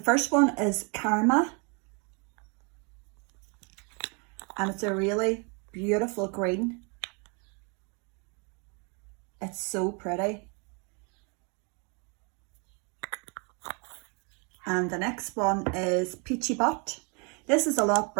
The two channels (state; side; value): quieter; left; 34.2 dB